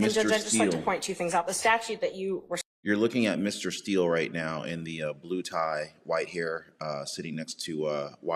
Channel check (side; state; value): both; identical; correlation 1.00